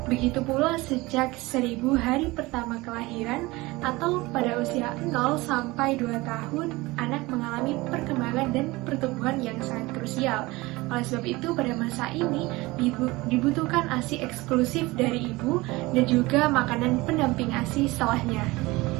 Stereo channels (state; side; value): quieter; left; 21.4 dB